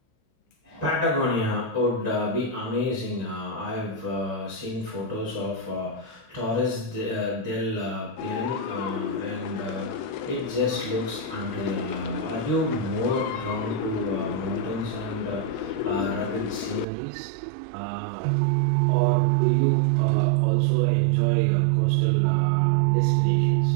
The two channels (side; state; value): left; drops out; at 16.9 s